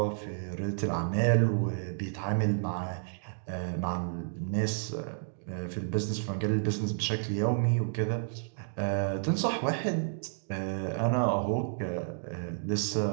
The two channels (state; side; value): silent; left; digital silence